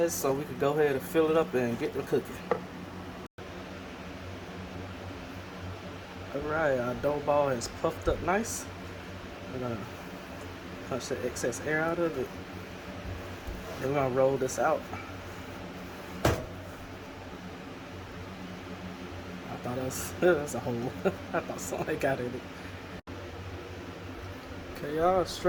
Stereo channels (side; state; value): both; identical; correlation 1.00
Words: so we can go ahead and fill it up and get to cooking. Alright, our dough ball is puffed up nice. We're gonna punch the excess air out of it. Then we're gonna roll this out. I thought that's a hole. I thought something got in it. Okay, y'all,